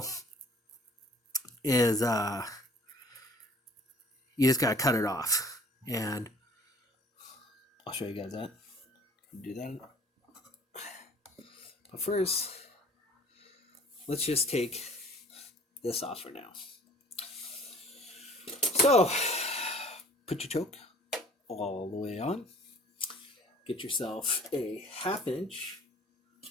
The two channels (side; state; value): both; normal; correlation 0.52